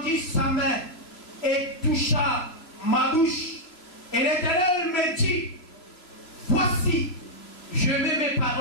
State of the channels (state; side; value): late; right; 3.0 ms